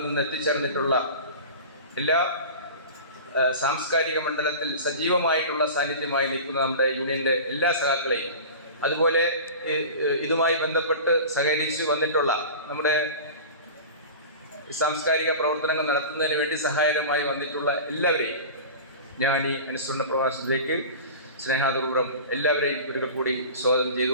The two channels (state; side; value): inverted; both; correlation -0.34